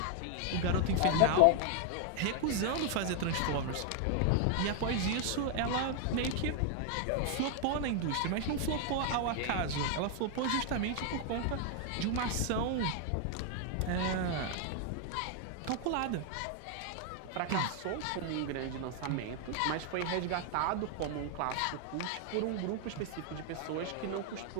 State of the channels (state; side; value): different; both; correlation 0.00